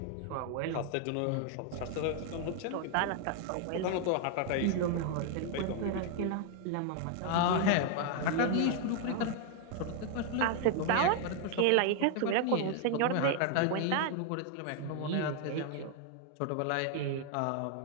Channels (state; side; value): different; both; correlation 0.00